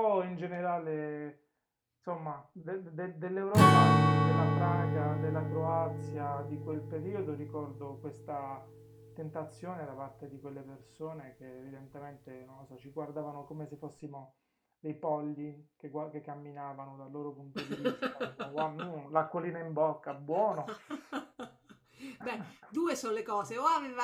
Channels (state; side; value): identical; both; correlation 1.00